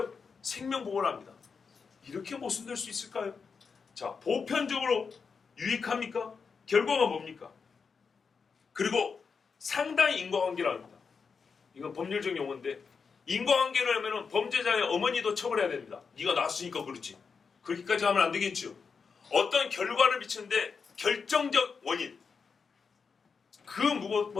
생명보호를 합니다. 이렇게 모순될 수 있을까요? 자, 보편적으로 유익합니까? 결과가 뭡니까? 그리고 상당히 인과관계를 합니다. 이건 법률적 용어인데 인과관계를 하면 범죄자의 어머니도 처벌해야 됩니다. 네가 낳았으니까 그렇지. 그렇게까지 하면 안 되겠죠. 어떤 결과를 미치는데 결정적 원인 그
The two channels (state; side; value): quieter; right; 5.5 dB